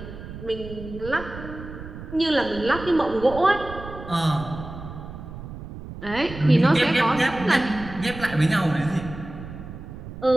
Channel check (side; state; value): right; noise; rumble, 12 dB below the sound